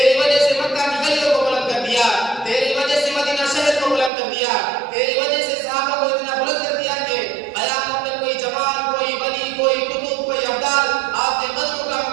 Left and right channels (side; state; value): left; drops out; at 4.1 s